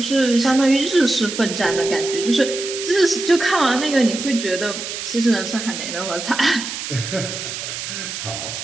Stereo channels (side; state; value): right; noise; hiss, 7 dB below the sound